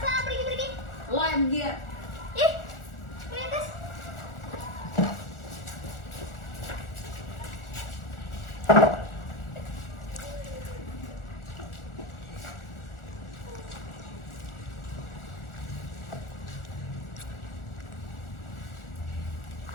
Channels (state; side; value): late; right; 1.4 ms